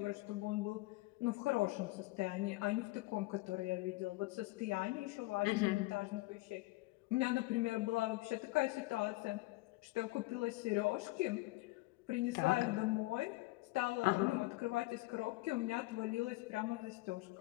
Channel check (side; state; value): right; quieter; 21.4 dB